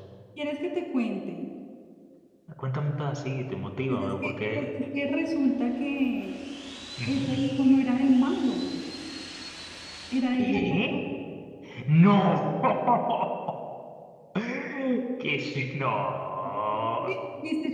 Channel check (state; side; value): identical; both; correlation 1.00